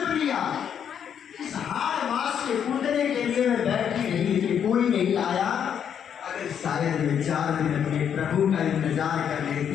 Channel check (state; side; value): quieter; right; 8.4 dB